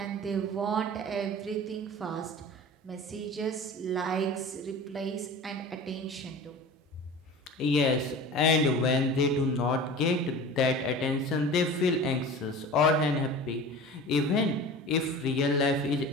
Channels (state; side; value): normal; both; correlation 0.37